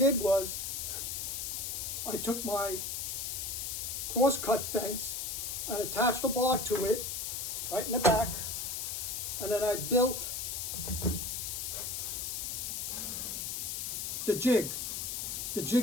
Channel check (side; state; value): left; noise; hiss, 3 dB below the sound